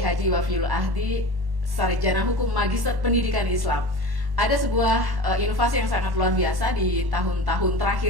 Haji Wafiul Ahdi, Sarjana Hukum Magister Pendidikan Islam. Ada sebuah inovasi yang sangat luar biasa di tahun-tahun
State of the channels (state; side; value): late; left; 1.1 ms